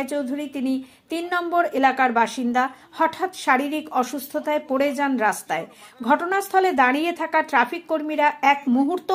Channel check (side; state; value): both; identical; correlation 1.00